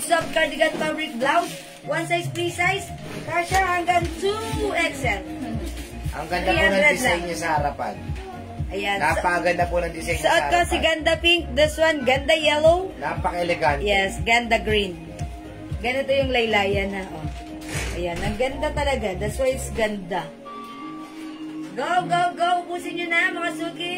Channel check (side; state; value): both; identical; correlation 1.00